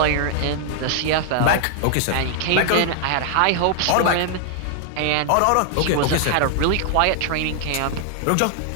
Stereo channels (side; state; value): both; different; correlation 0.00